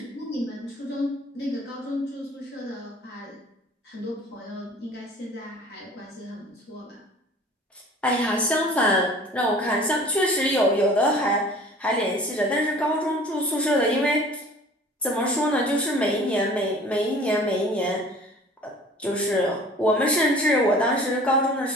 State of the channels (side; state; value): both; normal; correlation 0.47